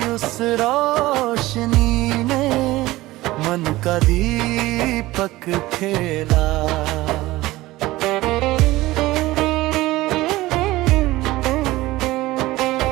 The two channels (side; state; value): left; quieter; 18.2 dB